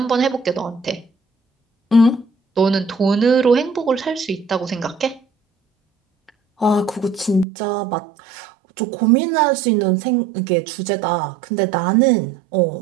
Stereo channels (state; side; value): drops out; left; at 7.5 s